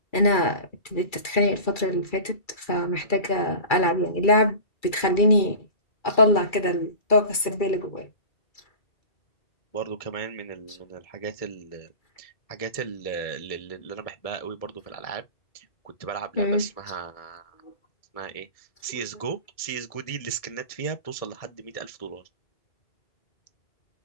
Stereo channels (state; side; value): late; right; 2.3 ms